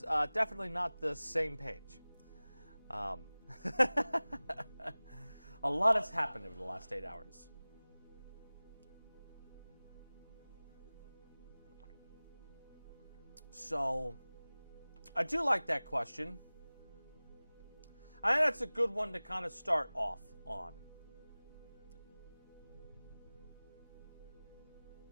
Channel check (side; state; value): both; inverted; correlation -0.99